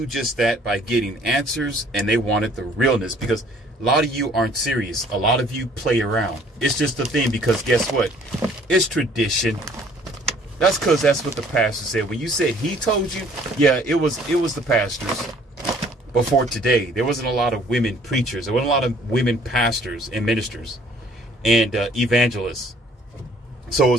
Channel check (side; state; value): both; normal; correlation 0.58